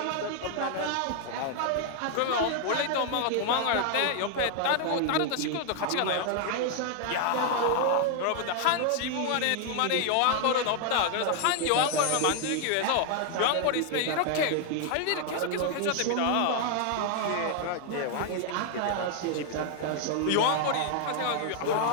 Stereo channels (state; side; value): different; both; correlation 0.00